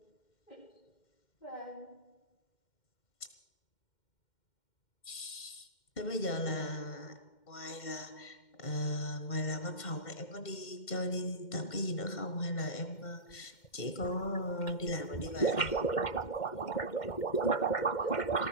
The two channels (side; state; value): right; late; 2.1 ms